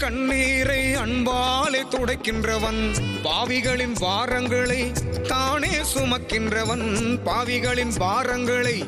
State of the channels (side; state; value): both; identical; correlation 1.00